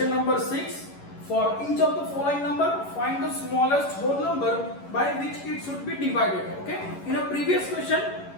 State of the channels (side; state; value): right; late; 11 ms